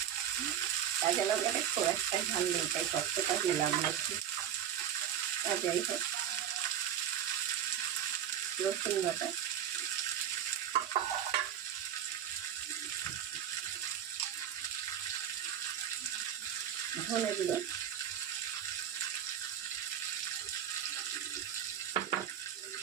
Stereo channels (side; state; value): left; quieter; 10.0 dB